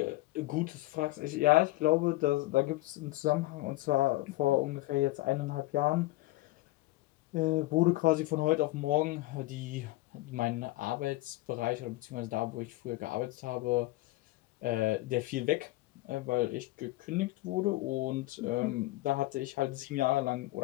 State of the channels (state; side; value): quieter; right; 19.2 dB